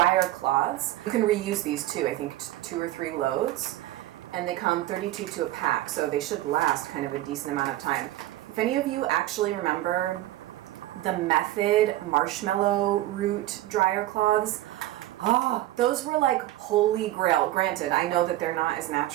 cloths. You can reuse these too, I think 2 or 3 loads. And they come 32 to a pack, so they should last kind of a decent amount of time. If any of you actually remember the Method marshmallow root dryer cloths, those were like holy grail. Granted, I know that they're not as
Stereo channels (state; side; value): quieter; left; 15.3 dB